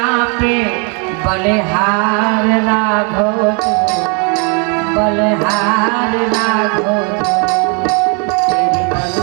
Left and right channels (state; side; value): quieter; left; 35.2 dB